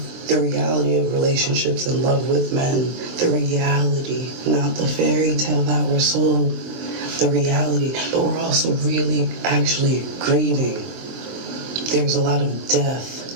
the reality of relationships and love with men. The reality, not the fairy tale that we're sold. The reality, but we're also really actually grieving. There's a lot of death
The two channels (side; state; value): left; late; 23 ms